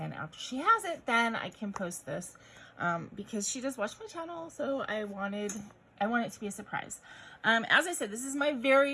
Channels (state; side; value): identical; both; correlation 1.00